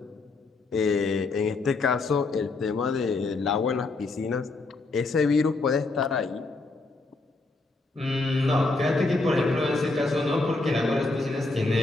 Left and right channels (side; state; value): right; quieter; 3.4 dB